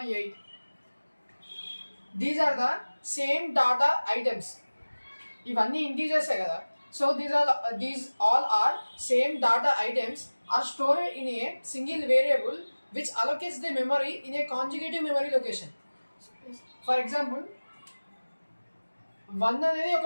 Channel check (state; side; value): inverted; both; correlation -1.00